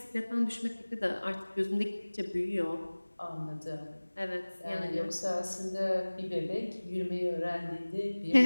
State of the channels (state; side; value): inverted; both; correlation -1.00